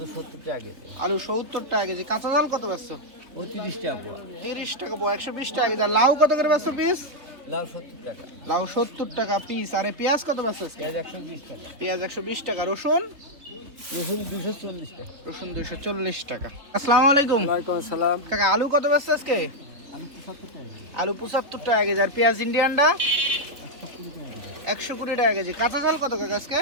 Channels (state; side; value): late; left; 3.3 ms